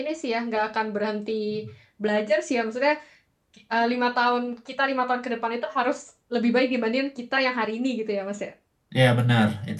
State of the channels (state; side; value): identical; both; correlation 1.00